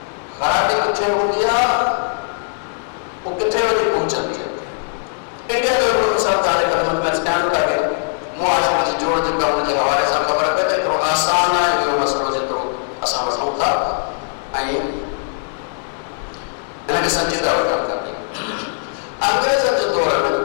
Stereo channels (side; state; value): right; silent; digital silence